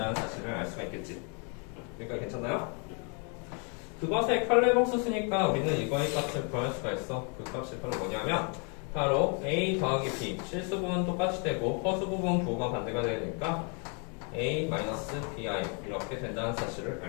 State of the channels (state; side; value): quieter; right; 37.2 dB